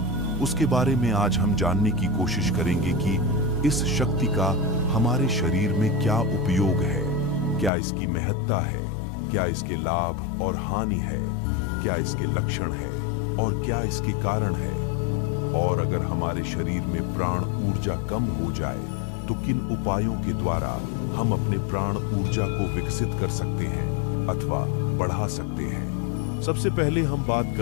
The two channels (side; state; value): right; drops out; at 7.7 s